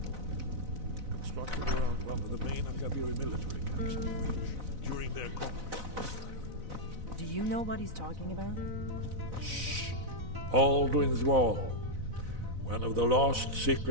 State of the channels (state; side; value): late; left; 4.0 ms